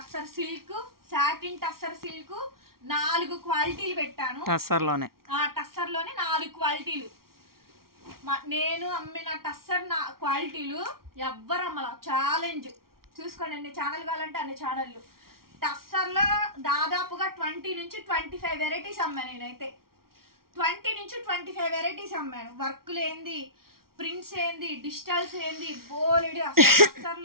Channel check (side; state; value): left; late; 0.93 ms